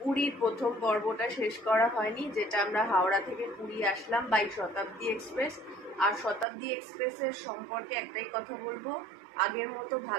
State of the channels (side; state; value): left; drops out; at 6.5 s